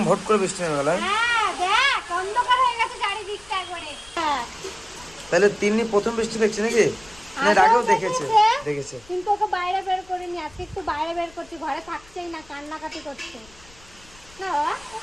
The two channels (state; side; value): noise; left; rumble, 24 dB below the sound